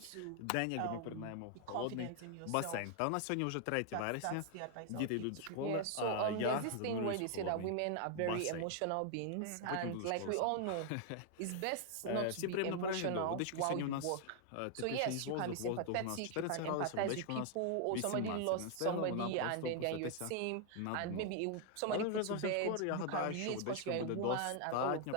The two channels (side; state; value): both; different; correlation 0.00